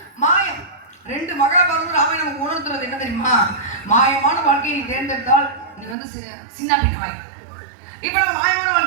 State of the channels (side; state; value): left; drops out; at 6.0 s